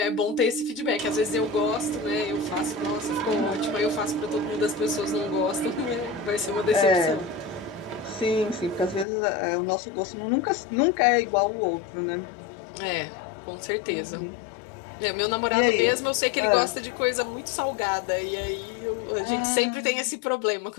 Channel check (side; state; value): right; drops out; at 9.1 s